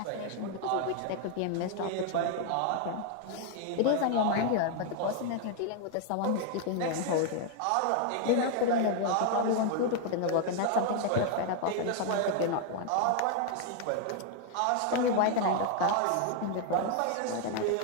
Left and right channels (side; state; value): both; different; correlation 0.00